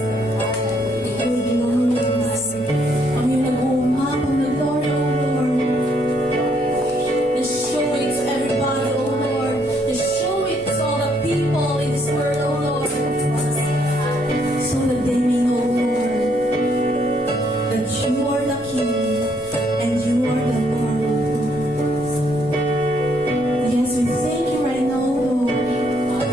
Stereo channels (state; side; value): noise; left; hum, 26 dB below the sound